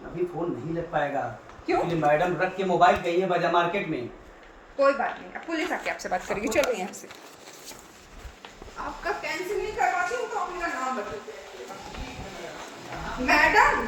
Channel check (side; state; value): both; identical; correlation 1.00